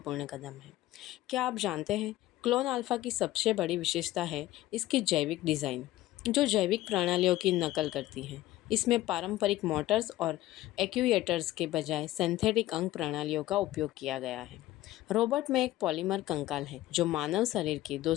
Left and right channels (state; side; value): quieter; right; 15.9 dB